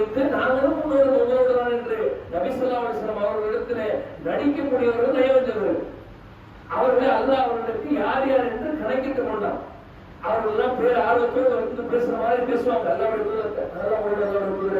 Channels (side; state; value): both; identical; correlation 1.00